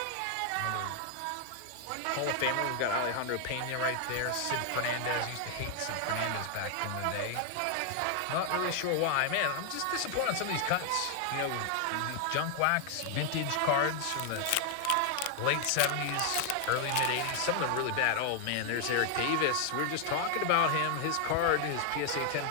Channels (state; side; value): different; both; correlation 0.00